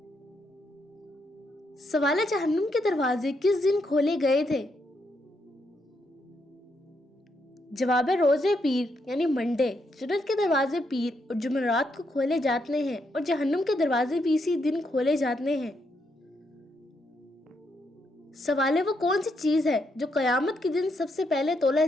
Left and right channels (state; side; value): normal; both; correlation 0.78